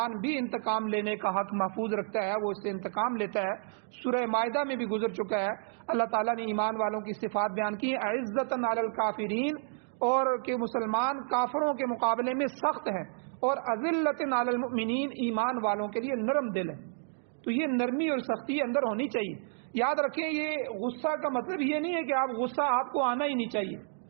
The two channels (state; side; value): silent; left; digital silence